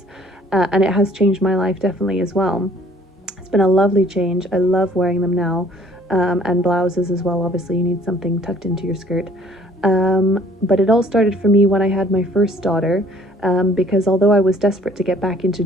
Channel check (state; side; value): normal; both; correlation 0.57